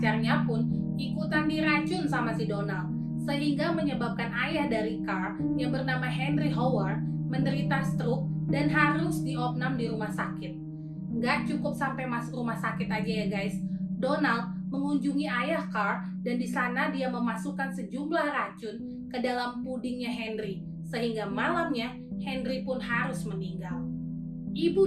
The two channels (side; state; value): both; identical; correlation 1.00